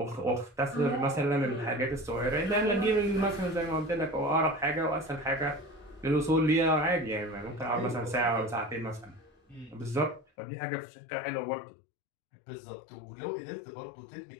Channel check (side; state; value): right; drops out; at 10.2 s